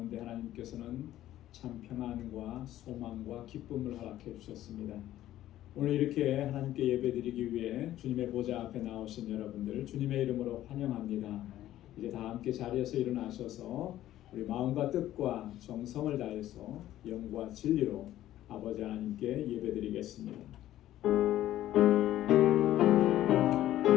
하나님께서는 참 평안과 소망과 기쁨을 허락해 주셨습니다. 오늘 이렇게 하나님께 예배드리기 위해 주님의 보좌 앞에 나오신 여러분들 주님의 이름으로 환영합니다. 이제 다 함께 자리에서 일어나셔서 우리 마음과 뜻과 정성을 다해서 영과 진리로 아버지 하나님께 예배드리겠습니다.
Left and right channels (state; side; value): quieter; right; 13.5 dB